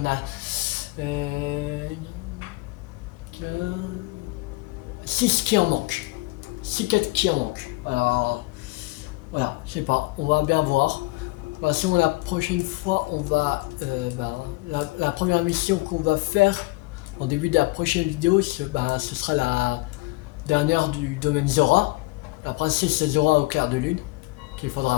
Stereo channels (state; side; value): quieter; right; 22.9 dB